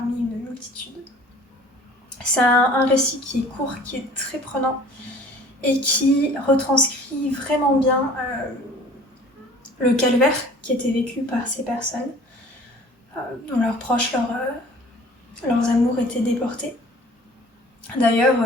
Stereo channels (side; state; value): both; normal; correlation 0.49